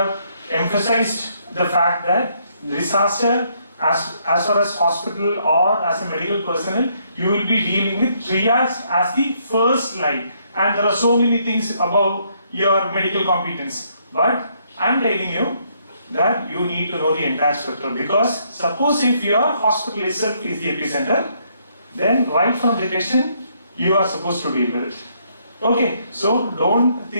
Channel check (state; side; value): inverted; both; correlation -0.71